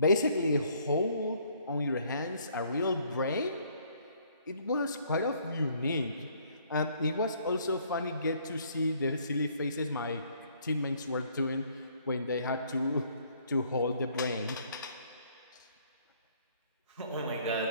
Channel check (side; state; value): both; inverted; correlation -0.63